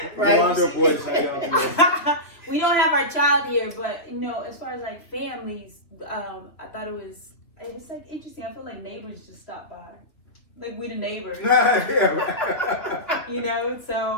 Right. Yolanda boys, how y'all doing? We don't have our child here, but as far as like families, I thought it's like interesting. I feel like neighbors just stop by, like we the neighbors, Yeah.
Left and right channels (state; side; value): late; right; 2.8 ms